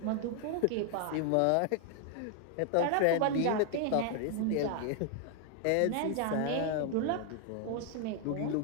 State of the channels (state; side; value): different; both; correlation 0.00